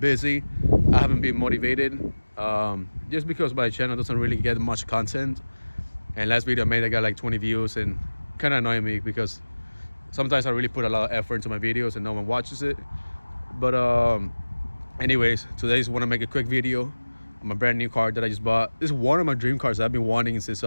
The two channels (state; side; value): inverted; both; correlation -1.00